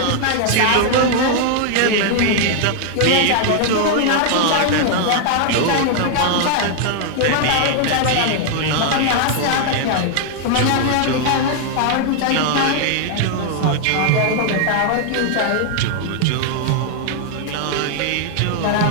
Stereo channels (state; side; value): different; both; correlation 0.00